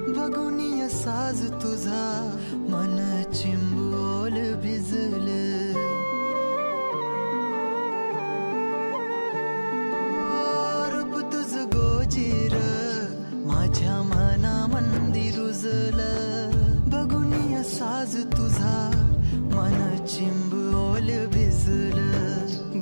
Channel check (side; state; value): both; inverted; correlation -1.00